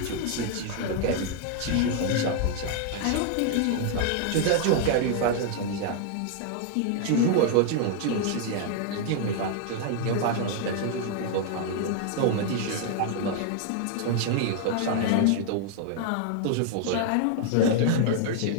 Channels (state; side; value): different; both; correlation 0.00